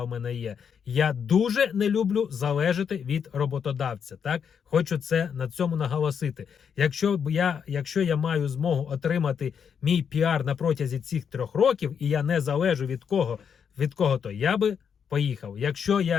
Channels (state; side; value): quieter; right; 7.2 dB